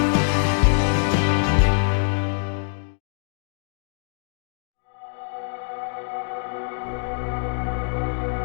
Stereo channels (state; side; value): silent; right; digital silence